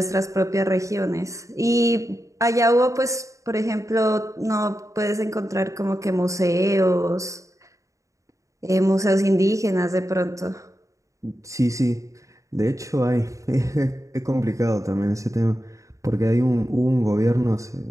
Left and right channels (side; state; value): left; late; 0.15 ms